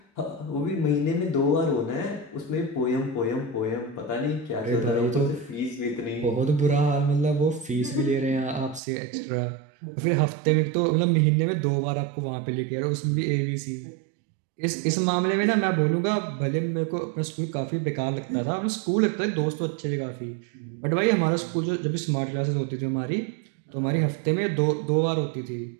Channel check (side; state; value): left; drops out; at 8.8 s